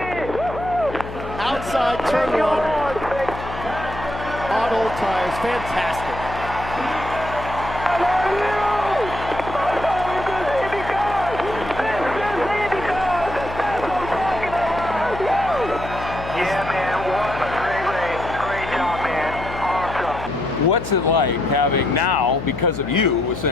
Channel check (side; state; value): left; noise; hum, 10 dB below the sound